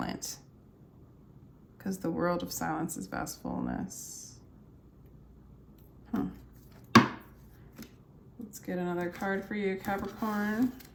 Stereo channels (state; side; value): identical; both; correlation 1.00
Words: because the world of silence is vast fullness. Let's get another card for you, Capricorn.